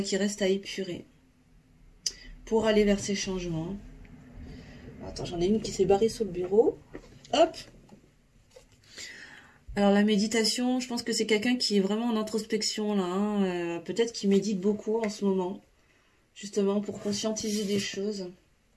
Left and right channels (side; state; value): both; identical; correlation 1.00